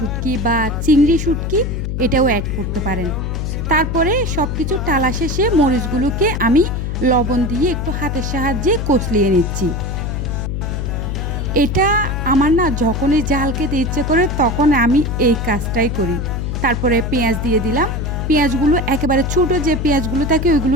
বা চিংড়ি শুটকি এটাও অ্যাড করতে পারেন। তারপরে সব কিছু টালা শেষে মরিচগুলোকে আমি লবণ দিয়ে একটু হাতের সাহায্যে কষলিয়ে নিচ্ছি। এটা আমার না যখনই ঝাল খেতে ইচ্ছে করে তখন আমি এই কাজটাই করি। তারপরে পেঁয়াজ দিয়ে দিলাম, পেঁয়াজগুলো একেবারে ছোটো যে পেঁয়াজগুলো থাকে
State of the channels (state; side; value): noise; left; hum, 2 dB below the sound